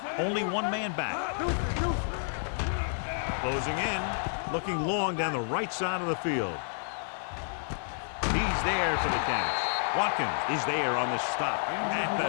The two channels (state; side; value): silent; right; digital silence